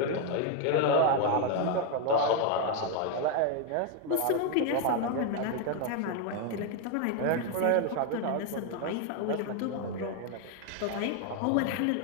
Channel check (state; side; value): different; both; correlation 0.01